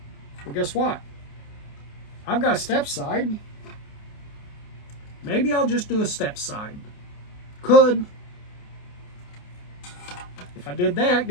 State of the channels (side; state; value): right; late; 28 ms